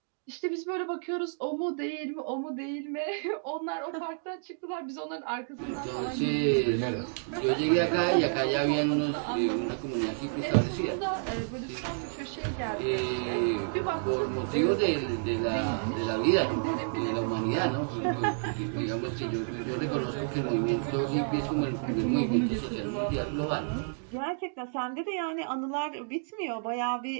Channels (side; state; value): left; silent; digital silence